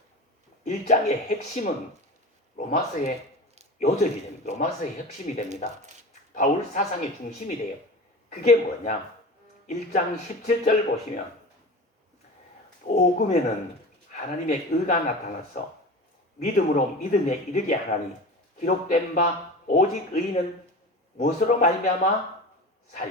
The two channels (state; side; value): normal; both; correlation 0.32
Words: 1장의 핵심은 로마서의 요절이 됩니다. 로마서의 핵심이 됩니다. 바울 사상의 중심이 돼요. 그게 뭐냐? 1장 17절 보시면 복음에는 하나님의 의가 나타나서 믿음으로 믿음에 이르게 하나니 기록된 바 오직 의인은 무엇으로 말미암아